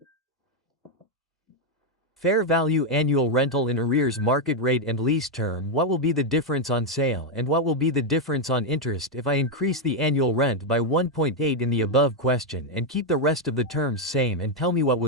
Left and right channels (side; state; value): both; normal; correlation 0.02